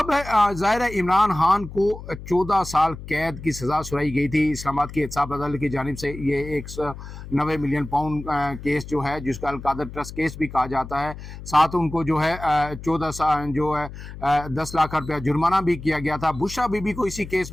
ظاہر ہے عمران خان کو 14 سال قید کی سزا سنائی گئی تھی اسلام آباد کی احتساب عدالت کی جانب سے۔ یہ 190 ملین پاؤنڈ کیس جو ہے، جس کا القادر ٹرسٹ کیس بھی کہا جاتا ہے، ساتھ ان کو جو ہے 14 سال جو ہے 10 لاکھ روپیہ جرمانہ بھی کیا گیا تھا۔ بشرا بی بی کو اسی کیس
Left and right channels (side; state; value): left; noise; hum, 12 dB below the sound